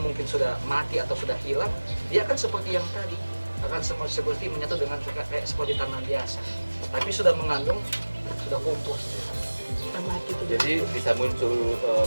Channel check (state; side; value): inverted; both; correlation -1.00